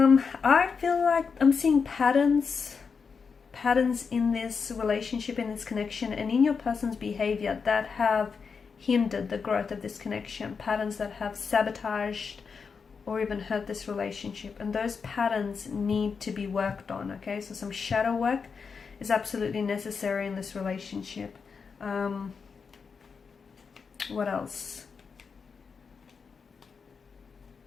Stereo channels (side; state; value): right; quieter; 5.6 dB